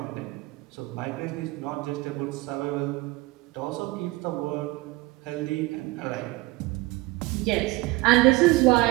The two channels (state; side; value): quieter; left; 21.1 dB